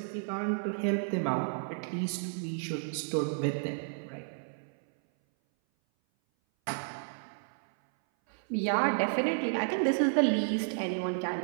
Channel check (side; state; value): left; silent; 57 dB below the other